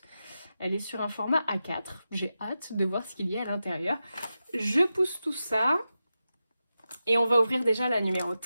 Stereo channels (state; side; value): inverted; both; correlation -0.91